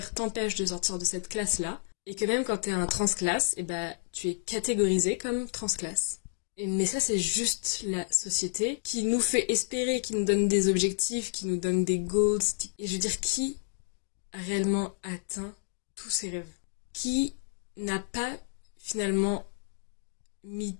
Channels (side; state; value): right; silent; digital silence